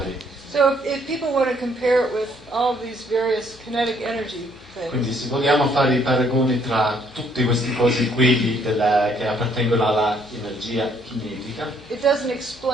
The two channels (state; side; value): noise; left; hum, 26 dB below the sound